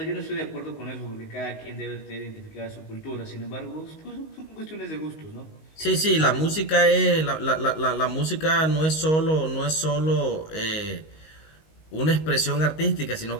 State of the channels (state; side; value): late; right; 19 ms